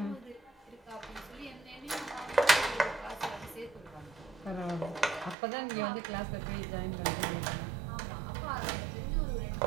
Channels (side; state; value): left; drops out; at 5.4 s